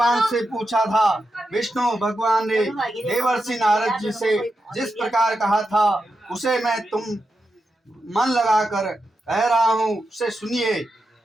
से पूछा था। विष्णु भगवान ने देवर्षि नारद जी से जिस प्रकार कहा था उसे मैं तुम मन लगाकर कह रहा हूँ, उसे सुनिए।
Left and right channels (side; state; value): both; normal; correlation 0.88